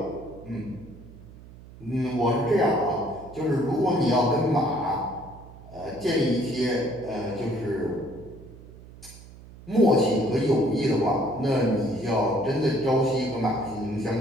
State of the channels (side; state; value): right; noise; hum, 19 dB below the sound